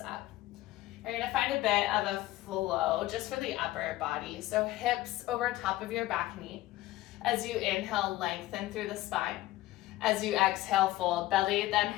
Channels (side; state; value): right; quieter; 16.5 dB